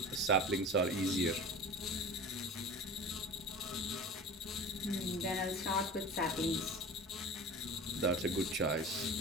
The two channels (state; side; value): normal; both; correlation 0.35